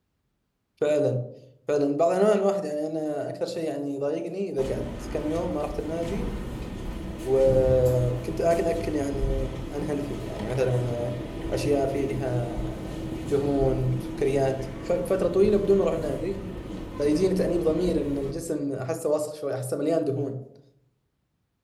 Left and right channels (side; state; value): both; identical; correlation 1.00